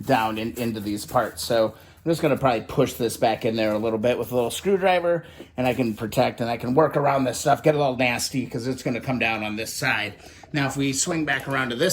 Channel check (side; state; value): both; identical; correlation 1.00